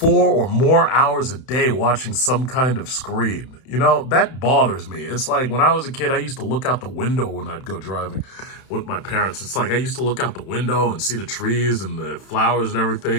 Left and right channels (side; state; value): right; late; 31 ms